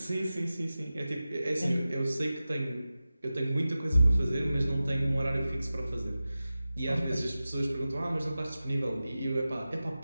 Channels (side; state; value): both; inverted; correlation -0.95